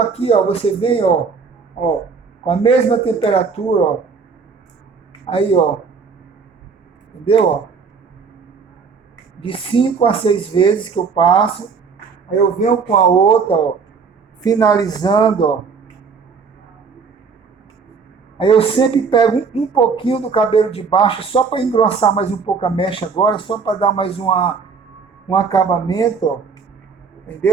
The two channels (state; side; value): quieter; left; 5.4 dB